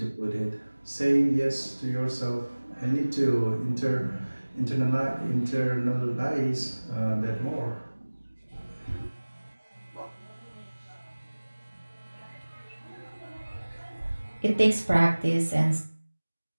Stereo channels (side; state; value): both; inverted; correlation -1.00